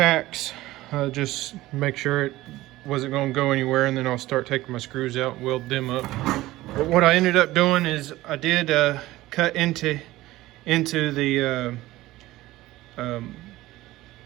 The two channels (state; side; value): quieter; left; 17.3 dB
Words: just make sure it wasn't going to go anywhere, and then I'll start taking my screws out and weld them up. But what I ended up doing is I did cut into the